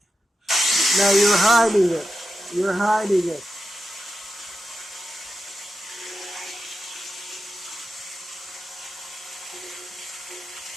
Now you're hiding it. You're hiding it.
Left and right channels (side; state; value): both; normal; correlation 0.90